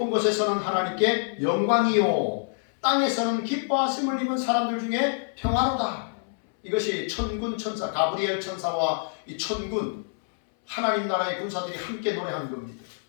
곳에서는 하나님께 영광이요, 땅에서는 기뻐하심을 입은 사람들 중에 평화로다. 이것이 천군 천사, 가브리엘 천사와 이 천군, 하나님 나라의 군사들이 함께 노래하는 겁니다.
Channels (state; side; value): silent; right; 61 dB below the other